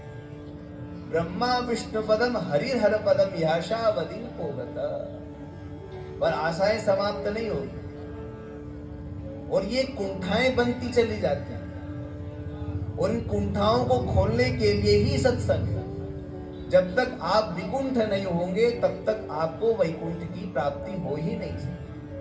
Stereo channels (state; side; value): identical; both; correlation 1.00